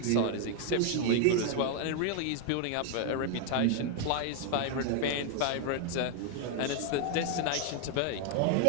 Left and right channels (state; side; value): different; both; correlation 0.00